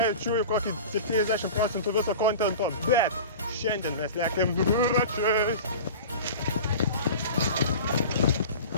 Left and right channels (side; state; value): both; inverted; correlation -0.35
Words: kokį 70% viso kontento, bet šiandien mes lekiam dviračiais.